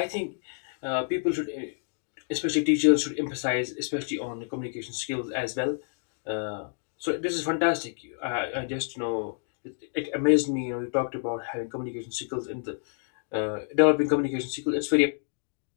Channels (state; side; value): silent; right; digital silence